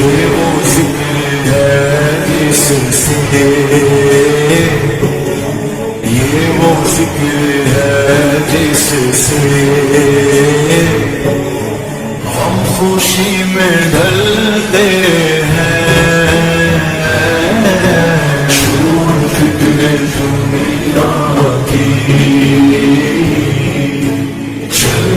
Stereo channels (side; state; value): both; identical; correlation 1.00